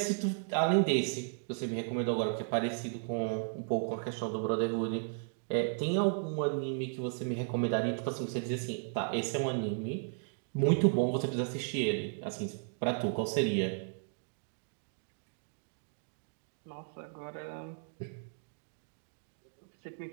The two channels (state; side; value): silent; left; digital silence